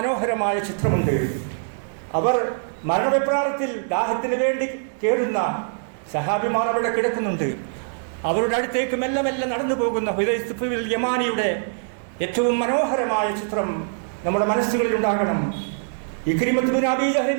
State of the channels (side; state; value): left; silent; digital silence